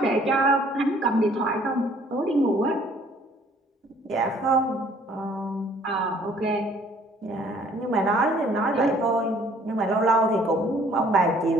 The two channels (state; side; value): normal; both; correlation 0.58